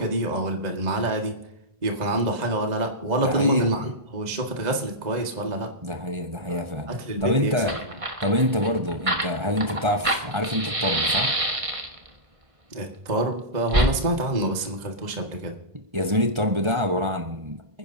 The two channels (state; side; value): late; left; 1.5 ms